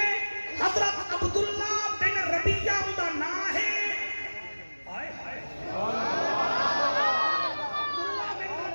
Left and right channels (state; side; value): inverted; both; correlation -1.00